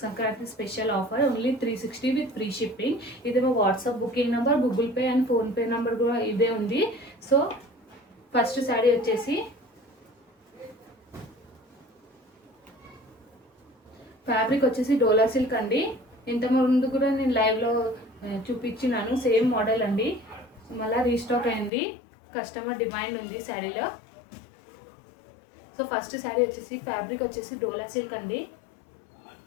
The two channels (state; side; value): drops out; right; at 21.7 s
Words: Sankranti special offer, only 360 with free shipping. ఇది మా WhatsApp booking number, Google Pay and PhonePe number కూడా ఇదే ఉంది. సో ఫస్ట్ శారీ వచ్చేసి ఫ్యాబ్రిక్ వచ్చేసి డోలా సిల్క్ అండి. ఇంతకుముందు కూడా నేను లైవ్లో చూపించినాను, సేమ్ మోడల్ అండి. మళ్ళీ రీస్టాక్ అయింది, కస్టమర్ డిమాండ్ ఉంది శారీలో. సో ఫస్ట్ శారీ వచ్చేసి ఫ్యాబ్రిక్ వచ్చేసి డోలా సిల్క్ అండి.